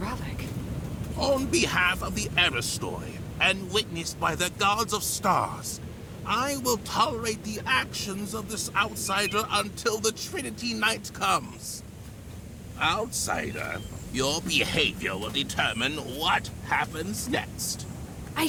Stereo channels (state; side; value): identical; both; correlation 1.00